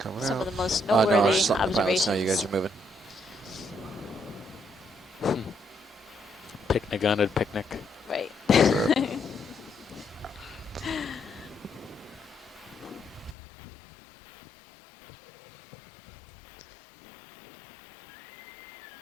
some out. of the most No, noteworthy it's not the pilots. observations. No, you guys are moving. Picnic on a picnic. Right.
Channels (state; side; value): drops out; right; at 13.4 s